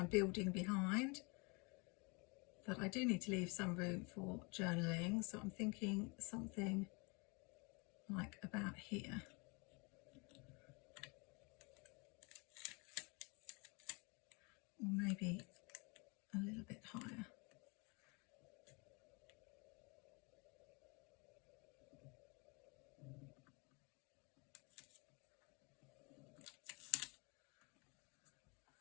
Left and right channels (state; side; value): quieter; right; 30.4 dB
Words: building behind. But I do need to leave some room for journaling, so I'm thinking something like about here. Or maybe a little bit higher.